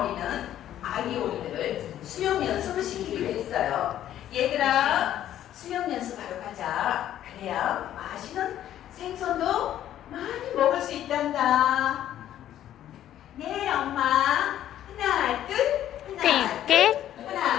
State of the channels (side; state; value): right; quieter; 11.7 dB